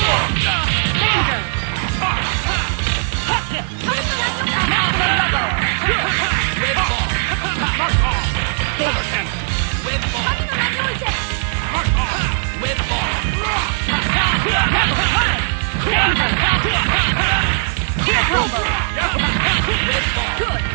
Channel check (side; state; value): left; silent; 67 dB below the other